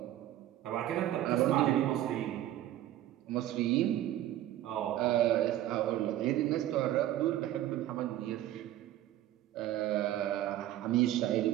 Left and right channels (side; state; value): left; quieter; 13.3 dB